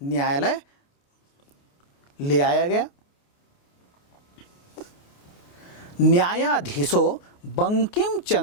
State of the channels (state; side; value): late; right; 28 ms